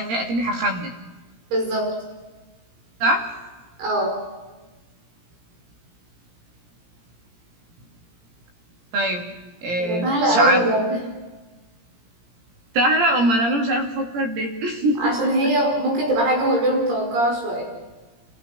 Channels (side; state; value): left; late; 17 ms